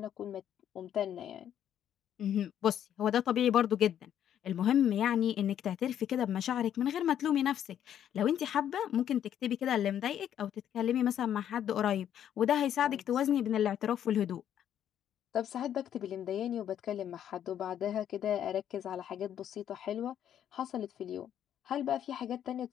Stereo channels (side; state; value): right; quieter; 10.1 dB